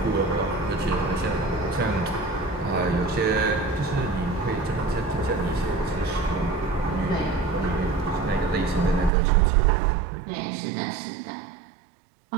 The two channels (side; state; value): left; drops out; at 9.1 s